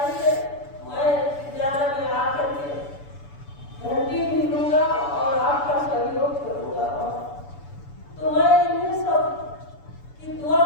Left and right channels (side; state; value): right; late; 6.9 ms